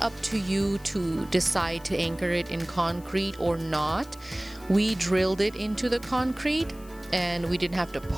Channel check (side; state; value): left; noise; hiss, 23 dB below the sound